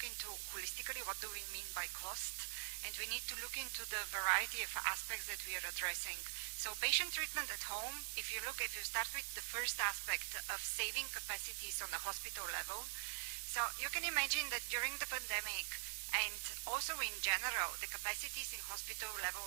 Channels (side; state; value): left; silent; digital silence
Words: into holistically what do we mean by cost, and we need to look into the variety of aspects that we are addressing. So patient treatment at home, if you start with the first aspect of saving capacities on the hospital level, so you can imagine that during the pandemic and also in general, the capacities in hospital level